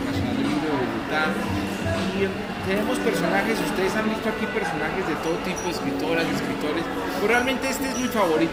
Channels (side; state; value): both; identical; correlation 1.00